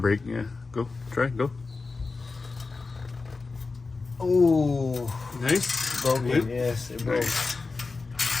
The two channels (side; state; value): right; quieter; 4.0 dB